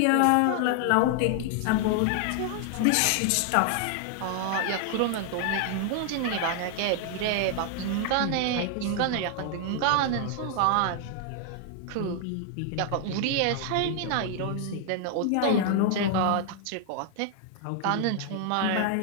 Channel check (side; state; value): both; different; correlation 0.00